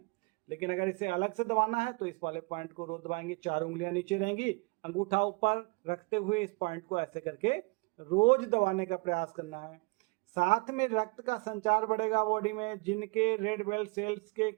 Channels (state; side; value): quieter; left; 29.1 dB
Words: लेकिन अगर इसे अलग से दबाना है तो इस वाले पॉइंट को रोज दबाएंगे, 4 उंगलियां नीचे रहेंगी, अंगूठा ऊपर रखते हुए इस पॉइंट को ऐसे करके रोज दबाने का प्रयास करना है। साथ में रक्त का संचार बढ़ेगा बॉडी में। जिनके रेड ब्लड सेल्स के